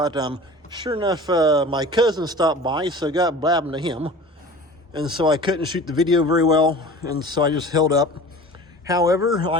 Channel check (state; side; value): normal; both; correlation 0.40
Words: sure enough, my cousin stopped by, so I got blabbing to him, and so I couldn't shoot the video very well, and so I just held up. However,